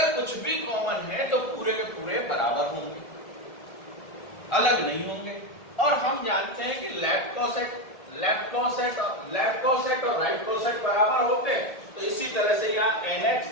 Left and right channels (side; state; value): right; late; 1.7 ms